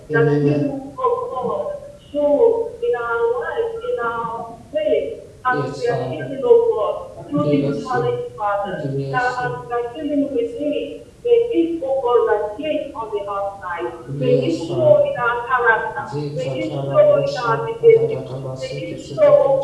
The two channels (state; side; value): identical; both; correlation 1.00